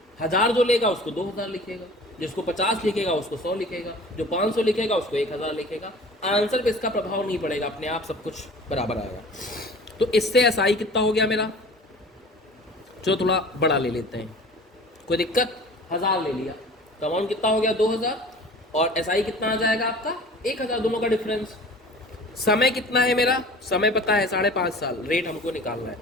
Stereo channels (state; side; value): normal; both; correlation 0.43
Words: 1000 जो लेगा उसको 2000 लिखेगा, जिसको 50 लिखेगा उसको 100 लिखेगा, जो 500 लिखेगा उसको 1000 लिखेगा। आंसर पे इसका प्रभाव नहीं पड़ेगा, अपने आप सब कुछ बराबर आएगा। तो इससे एसआई कितना हो गया मेरा, चलो थोड़ा बड़ा ले लेते हैं, कोई दिक्कत। 1000 ले लिया तो अमाउंट कितना हो गया 2000, और एसआई कितना आ जाएगा आपका 1000, दोनों का डिफरेंस। समय कितना है मेरा, समय पता है 5.5 साल, रेट हमको निकालना है,